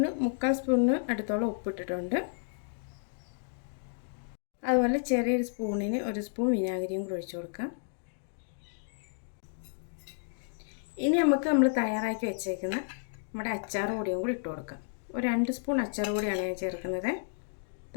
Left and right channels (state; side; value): silent; right; digital silence